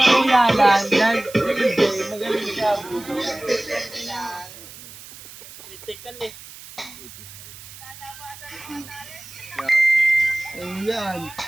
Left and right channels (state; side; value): noise; right; hiss, 17 dB below the sound